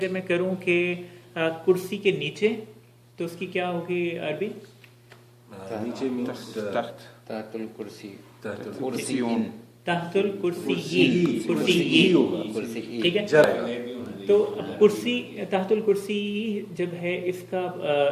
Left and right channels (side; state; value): both; identical; correlation 1.00